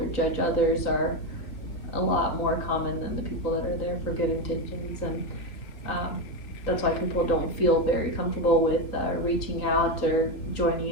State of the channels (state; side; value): late; right; 3.5 ms